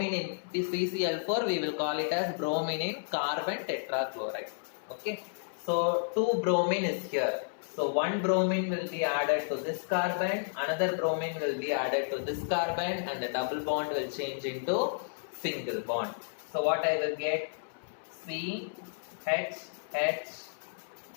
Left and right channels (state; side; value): silent; right; 57 dB below the other